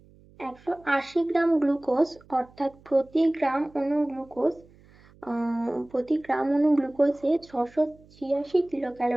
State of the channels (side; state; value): right; noise; hum, 27 dB below the sound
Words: 180 গ্রাম গ্লুকোজ অর্থাৎ প্রতি গ্রাম অণু গ্লুকোজে 686